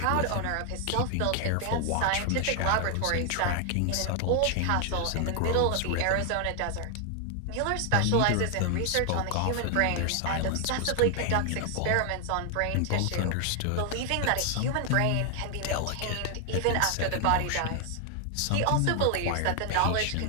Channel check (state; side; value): different; both; correlation 0.00